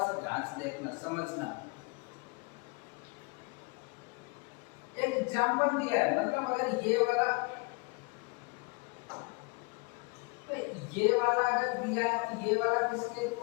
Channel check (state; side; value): quieter; right; 30.1 dB